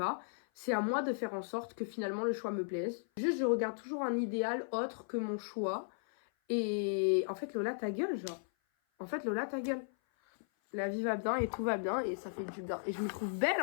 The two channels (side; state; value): right; silent; 54 dB below the other